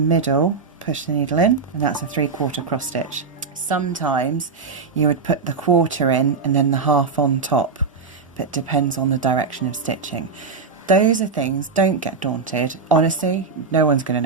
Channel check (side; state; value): left; quieter; 4.9 dB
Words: push the needle in, and that's a 3/4 cross stitch. Sometimes you would put the quarter in and then the half on top, but it depends on the direction of stitching. Those are things, don't get daunted. Honestly, no one's going